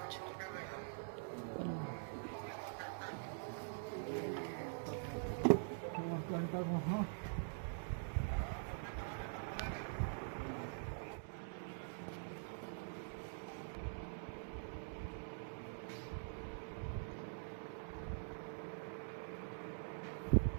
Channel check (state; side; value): silent; left; digital silence